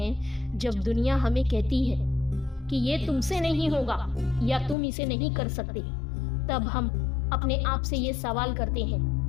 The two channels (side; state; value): right; drops out; at 4.8 s